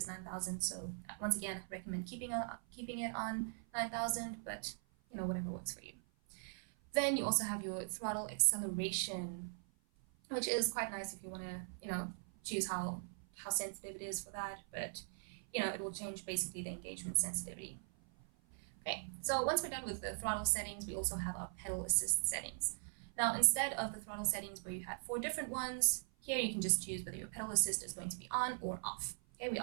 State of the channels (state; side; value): silent; left; 51 dB below the other